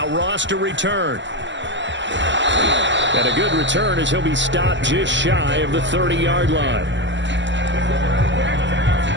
Ross to return. And a good return as he'll be stopped just shy of the 30-yard line.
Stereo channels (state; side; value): late; left; 0.53 ms